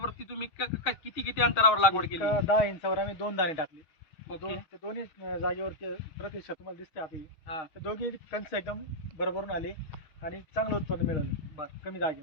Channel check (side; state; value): right; late; 6.4 ms